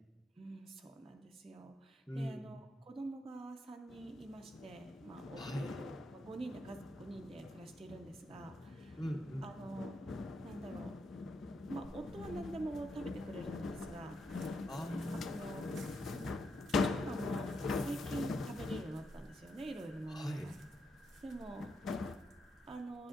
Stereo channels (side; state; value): both; normal; correlation 0.81